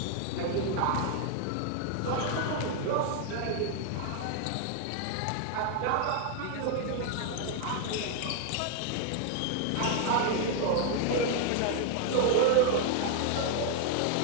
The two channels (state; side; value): different; both; correlation 0.00